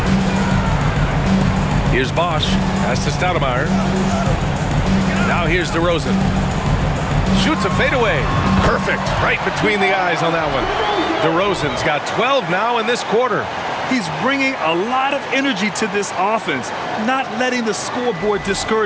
Here's Bosch. Pass to Stoudemire. Now here's DeRozan. Shoots a fadeaway. Perfect. Right between the eyes on that one. DeRozan's got 12 now in this quarter. He's bringing a lot of energy to this offense, not letting the scoreboard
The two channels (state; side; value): identical; both; correlation 1.00